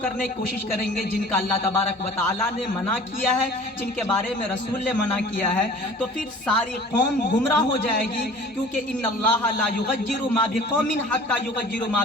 کرنے کی کوشش کریں گے جن کا اللہ تبارک و تعالیٰ نے منع کیا ہے، جن کے بارے میں رسول نے منع کیا ہے، تو پھر ساری قوم گمراہ ہو جائے گی، کیونکہ ان اللہ لا یغیر ما بقوم حتی یغیروا ما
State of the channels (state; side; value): normal; both; correlation 0.46